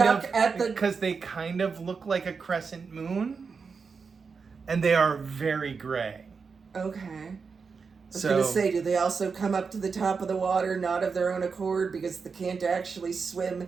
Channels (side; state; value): left; quieter; 5.3 dB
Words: of at the... because they kind of look like a crescent moon, and they are very gray. Okay. I was So going to say, do they also come up to the top of the water, not of their own accord, because they can't actually swim